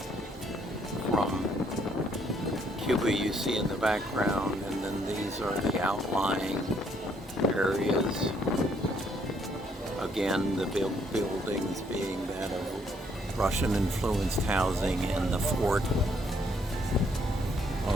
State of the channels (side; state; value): both; normal; correlation 0.69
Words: from Cuba you see in the background, and then these are the outlying areas. Again, the buildings being that of Russian-influenced housing and the fort